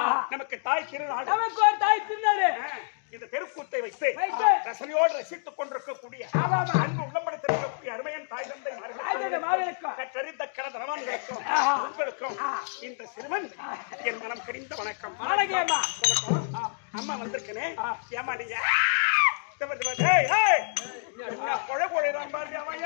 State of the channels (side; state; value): right; silent; digital silence